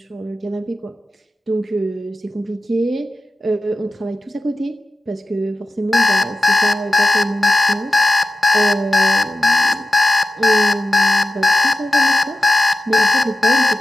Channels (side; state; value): both; normal; correlation 0.92